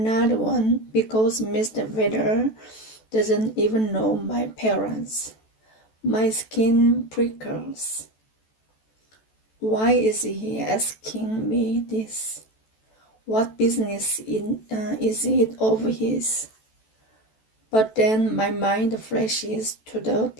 one because Mr. Vedder doesn't even know my parents. My skin prickles. Why is he asking me this? What business is it of his? But then my mind flashes to the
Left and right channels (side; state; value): right; late; 14 ms